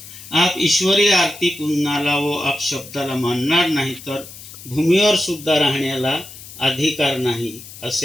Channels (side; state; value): left; noise; hiss, 16 dB below the sound